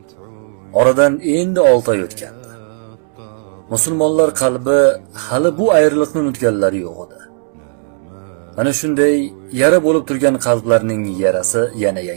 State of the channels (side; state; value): left; silent; digital silence